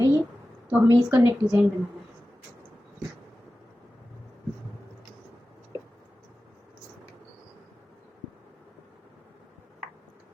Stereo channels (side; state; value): both; normal; correlation 0.95